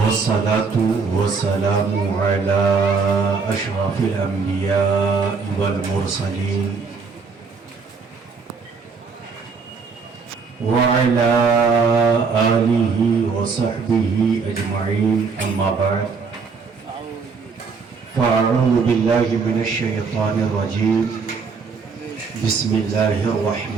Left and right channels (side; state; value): left; quieter; 5.0 dB